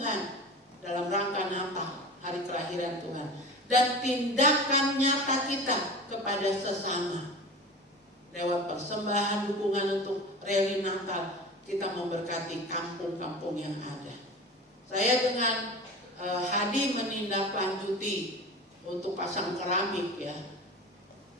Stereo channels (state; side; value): normal; both; correlation 0.33